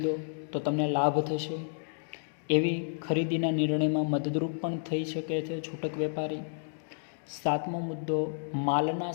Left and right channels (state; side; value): silent; right; digital silence